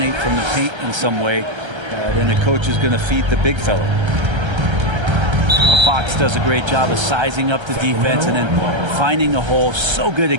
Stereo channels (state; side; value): late; left; 1.3 ms